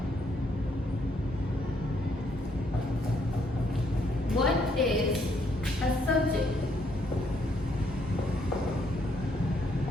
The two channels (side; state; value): both; normal; correlation 0.71